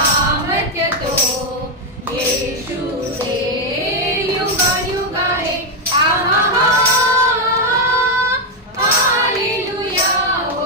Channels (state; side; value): normal; both; correlation 0.03